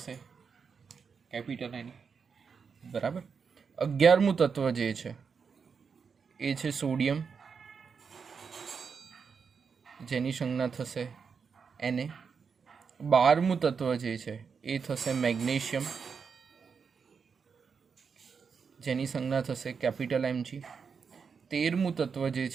કેપિટલ N. બરાબર. 11મું તત્વ જે છે એ છે સોડિયમ, જેની સંજ્ઞા થશે Na. 12મું તત્વ જે છે એ થશે મેગ્નેશિયમ, જેની સંજ્ઞા થશે કેપિટલ Mg. 13મું તત્વ જે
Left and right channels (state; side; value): quieter; left; 5.9 dB